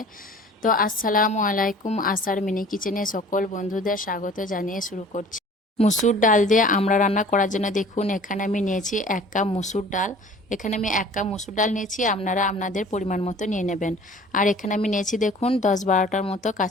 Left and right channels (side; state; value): both; normal; correlation 0.48